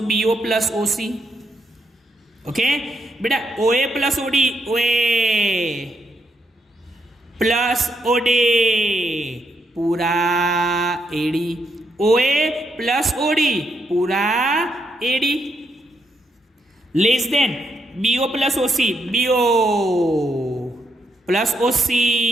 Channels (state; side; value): normal; both; correlation 0.78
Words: BO plus OC. Okay बेटा, OA plus OD, OA plus OD पूरा एडी, ओए प्लस ओडी पूरा AD, less than BO plus OC, BO plus OC